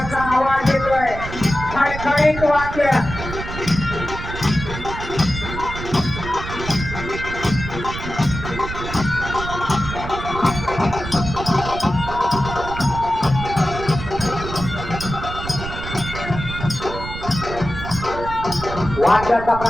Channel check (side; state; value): right; noise; rumble, 8 dB below the sound